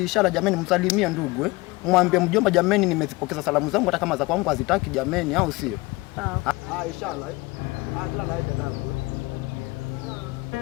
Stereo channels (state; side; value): quieter; right; 22.8 dB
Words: ishara jameni, msalimie ndugu mwambie mjomba jameni, nimezipokeza salamu zangu hata kama za kwangu hazitaki jameni, au sio? Sawa. Ishara kila laheri dadangu.